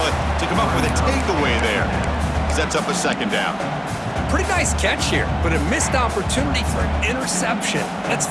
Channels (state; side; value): identical; both; correlation 1.00